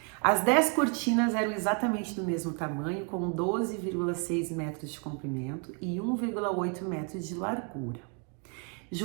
As 10 cortinas eram exatamente do mesmo tamanho, com 12,6 metros de comprimento e 1,8 metros de largura.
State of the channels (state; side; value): quieter; left; 38.0 dB